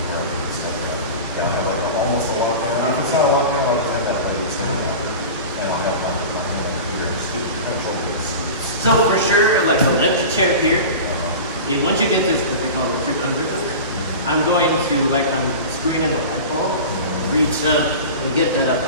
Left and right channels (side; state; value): both; inverted; correlation -0.32